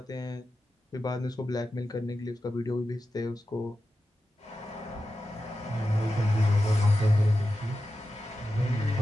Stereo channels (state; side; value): normal; both; correlation 0.92